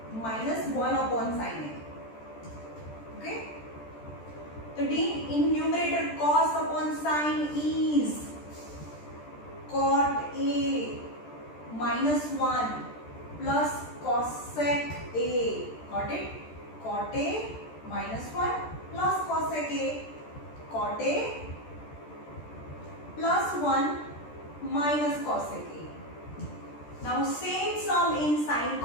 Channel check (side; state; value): right; late; 13 ms